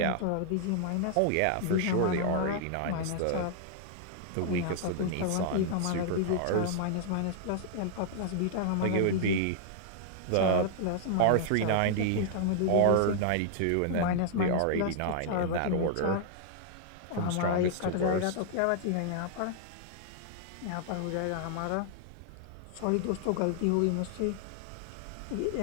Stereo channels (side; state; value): both; different; correlation -0.01